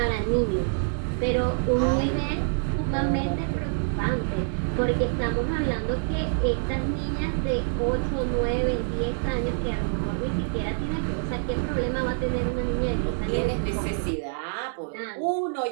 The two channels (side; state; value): left; silent; digital silence